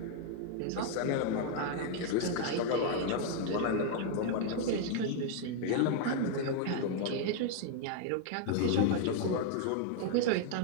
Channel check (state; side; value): different; both; correlation 0.00